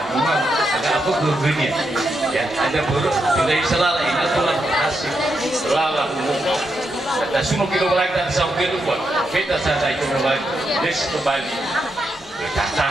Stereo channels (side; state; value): both; normal; correlation 0.83